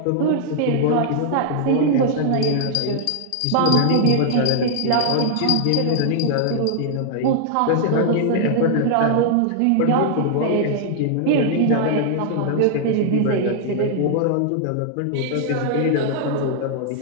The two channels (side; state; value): both; different; correlation -0.01